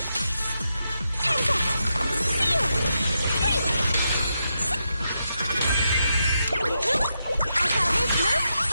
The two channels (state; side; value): inverted; both; correlation -0.84